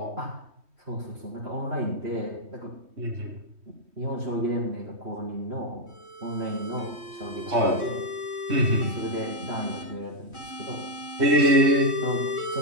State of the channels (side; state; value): left; late; 3.1 ms